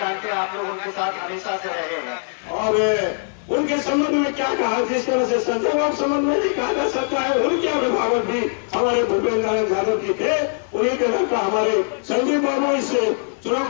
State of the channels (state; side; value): silent; right; digital silence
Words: हैं, आप लोग उनके साथ हमेशा से रहे हैं। और उनके संबंध में क्या कहा, जिस तरह से संजय बाबू संबंध में नहीं कहा जा सकता है, उनके अभिभावक भी हमारे भूपेंद्र नारायण यादव जी थे। उन्हीं के लड़का हमारे संजय बाबू इस चुनाव